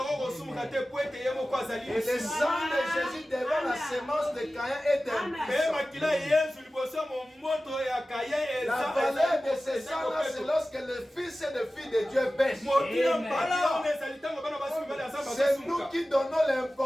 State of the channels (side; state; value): both; normal; correlation 0.96